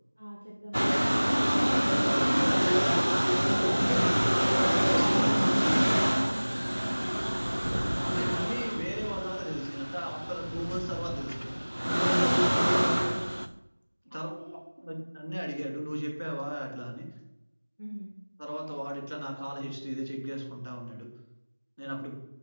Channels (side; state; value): both; inverted; correlation -1.00